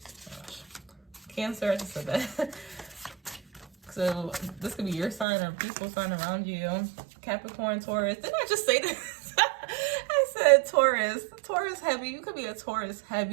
Gosh. Cancer, I just said that. So this could be your sign or a peaceful sign around you. Capricorn, Taurus. Didn't I just say this? I said Taurus. Taurus heavy. You could be a Taurus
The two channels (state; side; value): drops out; left; at 5.2 s